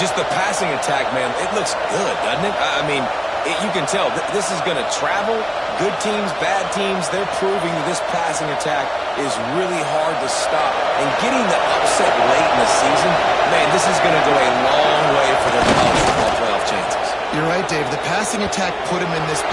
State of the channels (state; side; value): identical; both; correlation 1.00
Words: the passing attack, man, it looks good, doesn't it? I mean, you can tell this is going to travel. Good teams, bad teams, they're proving that this passing attack is really hard to stop. And getting the upset late in the season, man, this is going to go a long way for their college football playoff chances. You're right, Dave. The passing attack put them in this